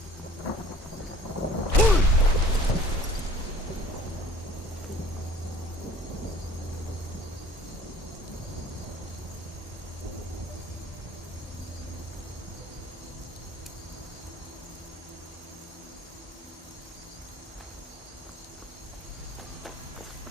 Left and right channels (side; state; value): both; normal; correlation 0.50